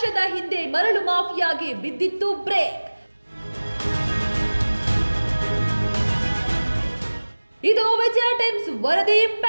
ಹಿಂದೆ ಮರಳು ಮಾಫಿಯಾಗೆ ಬಿದ್ದಿತ್ತು ಬ್ರೇಕ್. ಇದು ವಿಜಯ ಟೈಮ್ಸ್ ವರದಿ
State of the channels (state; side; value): inverted; both; correlation -1.00